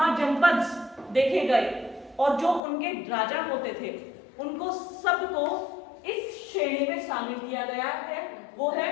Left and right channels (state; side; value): drops out; right; at 2.6 s